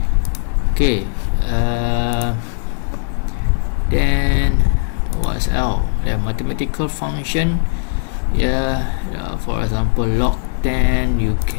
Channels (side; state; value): right; silent; digital silence